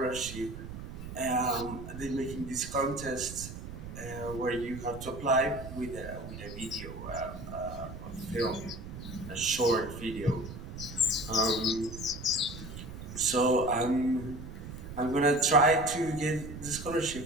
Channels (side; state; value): right; noise; rumble, 10 dB below the sound